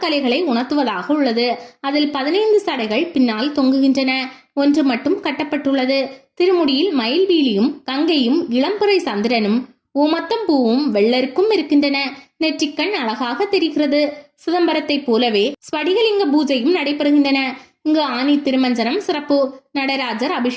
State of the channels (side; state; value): both; identical; correlation 1.00